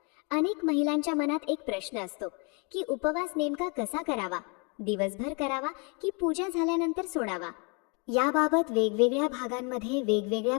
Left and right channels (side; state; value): right; quieter; 33.8 dB